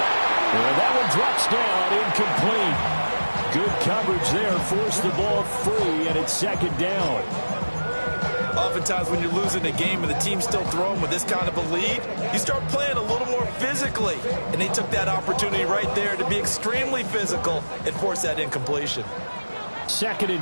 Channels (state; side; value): inverted; both; correlation -1.00